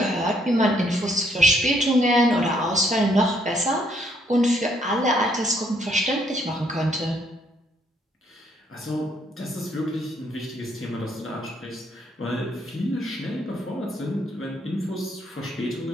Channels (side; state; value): both; normal; correlation 0.69